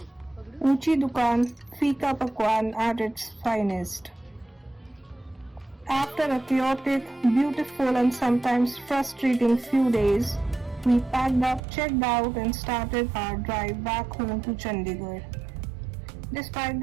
Uchi Dukan, Fika Pakwan at its finest. After a chaotic, beautiful and sometimes frustrating few days, we packed up, checked out and started our drive back home to Chandigarh. Despite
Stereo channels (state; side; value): drops out; left; at 11.6 s